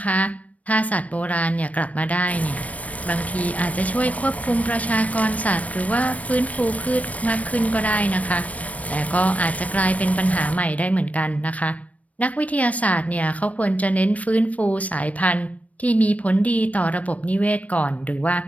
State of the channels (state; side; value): late; right; 0.068 ms